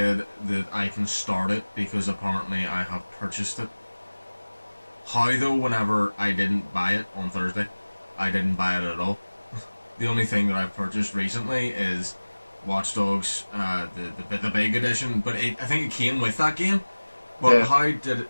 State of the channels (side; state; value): both; inverted; correlation -1.00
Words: that I can start it because apparently I have purchased it. How though, whenever I didn't buy it on Thursday, I didn't buy it at all. The only thing that I've purchased recently is Watch Dogs, the big edition. But I think it came with that game. But Yeah. how